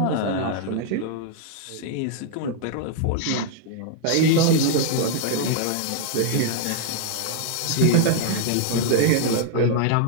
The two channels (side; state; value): both; different; correlation -0.01